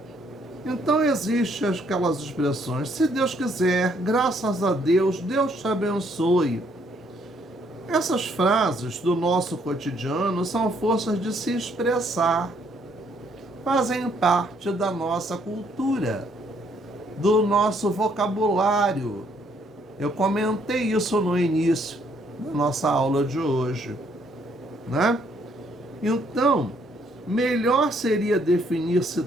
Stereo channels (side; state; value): both; normal; correlation 0.68